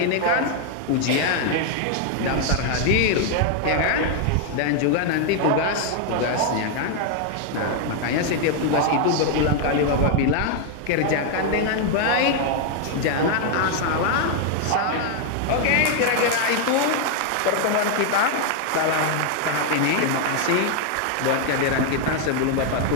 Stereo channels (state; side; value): different; both; correlation 0.00